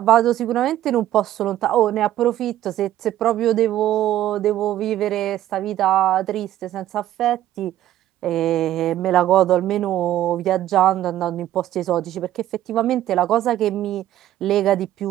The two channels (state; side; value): quieter; left; 13.1 dB